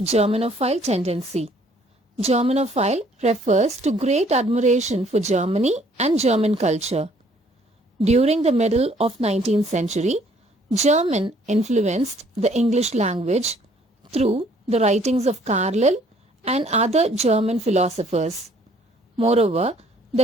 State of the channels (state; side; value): normal; both; correlation 0.61